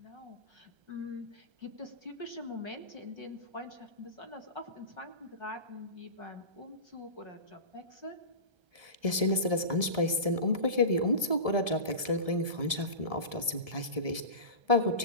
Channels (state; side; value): late; left; 1.3 ms